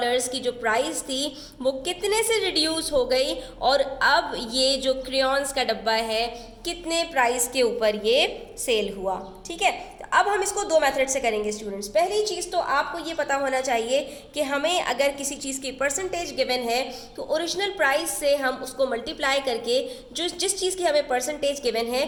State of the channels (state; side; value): identical; both; correlation 1.00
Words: की जो प्राइस थी वो कितने से रिड्यूस हो गई और अब ये जो क्रेयॉन्स का डब्बा है कितने प्राइस के ऊपर ये सेल हुआ। ठीक है, तो अब हम इसको दो मेथड से करेंगे स्टूडेंट्स। पहली चीज़ तो आपको ये पता होना चाहिए कि हमें अगर किसी चीज़ की परसेंटेज गिवन है तो ओरिजिनल प्राइस से हम उसको मल्टीप्लाई करके जिस चीज़ की हमें परसेंटेज गिवन